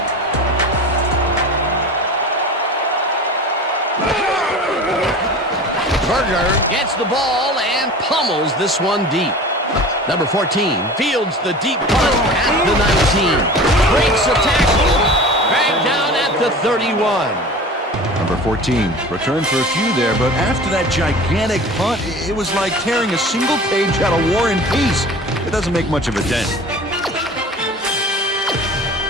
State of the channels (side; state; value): both; normal; correlation 0.38